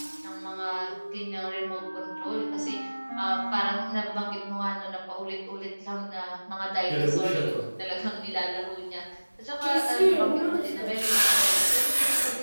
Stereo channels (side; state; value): both; inverted; correlation -1.00